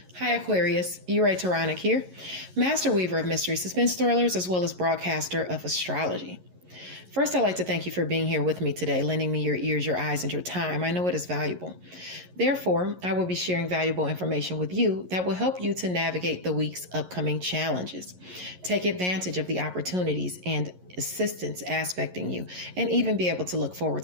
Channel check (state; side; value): late; left; 11 ms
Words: Hi Aquarius, Ray Taronic here, master weaver of mystery suspense thrillers as well as broadcaster of astrology. First, I'd like to thank you for being here with me today, lending me your ears, your eyes, and your time. I know it is valuable. Therefore, I will be sharing valuable information with you that will help you to navigate the week's upcoming challenges. Take advantage of the opportunities and assistance aspecting you, and even be able to look forward